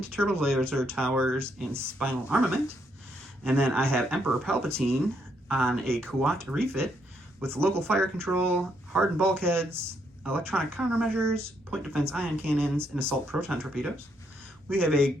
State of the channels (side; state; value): both; normal; correlation 0.75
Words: Turbo Laser Towers, and Spinal Armament. And then I have Emperor Palpatine on a Kuat refit with local fire control, hardened bulkheads, electronic countermeasures, point defense ion cannons, and assault proton torpedoes. We have a